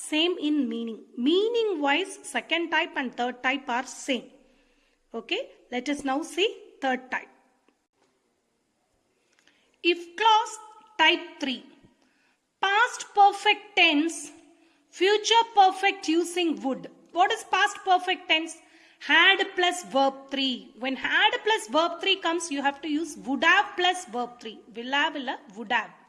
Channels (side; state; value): both; identical; correlation 1.00